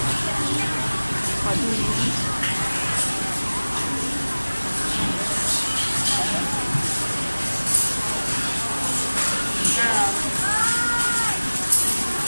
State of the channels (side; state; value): both; inverted; correlation -1.00